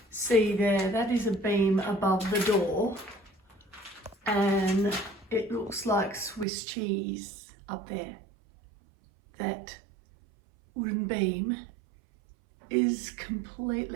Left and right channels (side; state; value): left; drops out; at 6.5 s